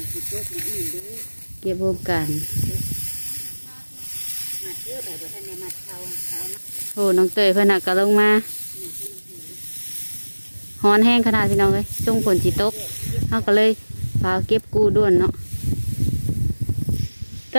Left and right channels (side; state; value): both; inverted; correlation -1.00